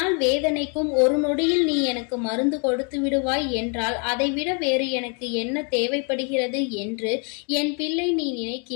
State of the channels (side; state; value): right; quieter; 37.0 dB